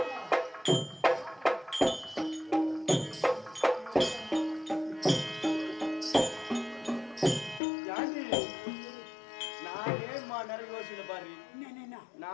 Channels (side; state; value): right; drops out; at 7.6 s